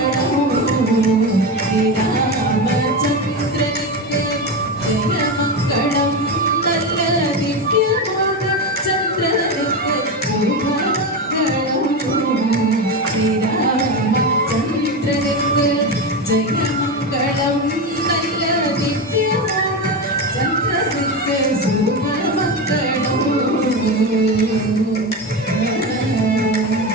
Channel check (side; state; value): both; normal; correlation 0.17